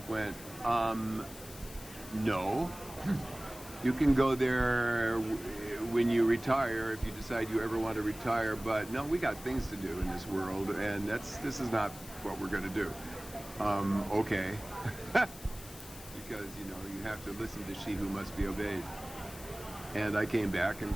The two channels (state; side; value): noise; left; hiss, 16 dB below the sound